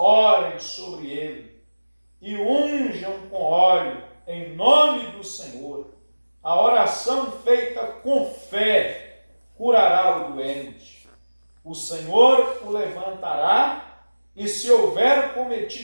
sobre ele e unjam com óleo em nome do Senhor. A oração feita com fé curará o doente. O Senhor o levantará, e se houver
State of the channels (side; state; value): both; inverted; correlation -1.00